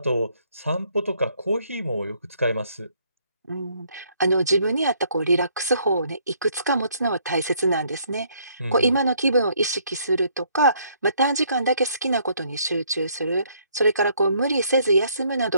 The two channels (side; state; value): both; inverted; correlation -0.67